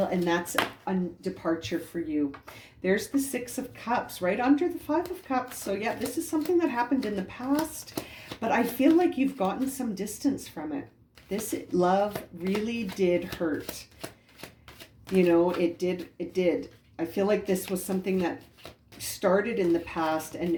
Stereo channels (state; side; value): identical; both; correlation 1.00